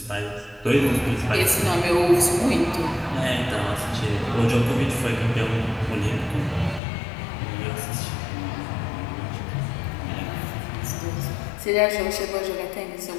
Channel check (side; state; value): right; drops out; at 6.8 s